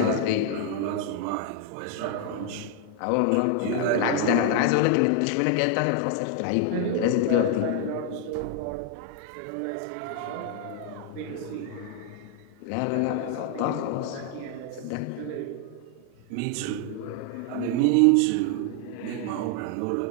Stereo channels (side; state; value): both; different; correlation 0.00